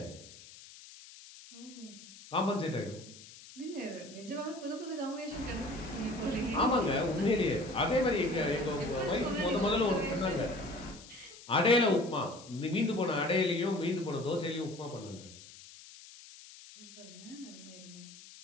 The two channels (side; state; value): left; noise; hiss, 18 dB below the sound